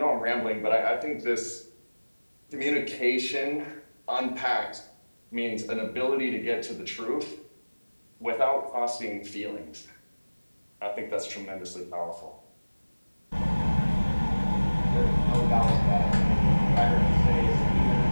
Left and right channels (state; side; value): inverted; both; correlation -1.00